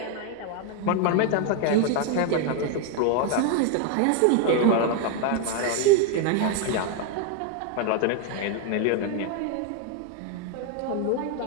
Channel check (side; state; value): both; different; correlation 0.00